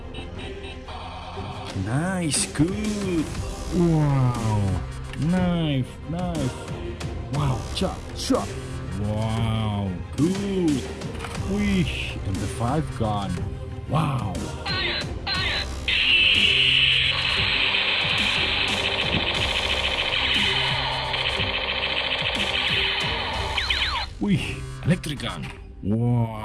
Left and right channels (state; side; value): identical; both; correlation 1.00